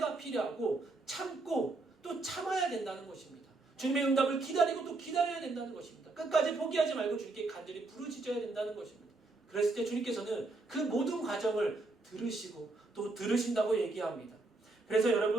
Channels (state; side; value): quieter; left; 3.3 dB